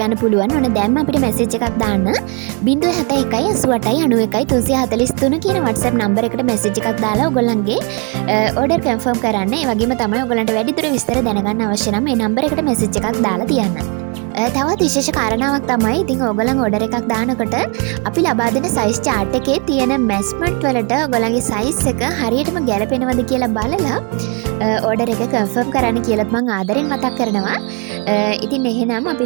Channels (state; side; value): quieter; left; 34.1 dB